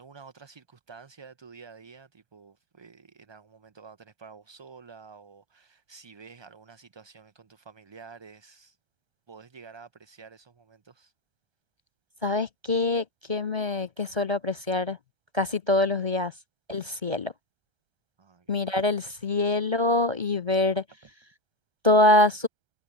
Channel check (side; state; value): left; late; 1.3 ms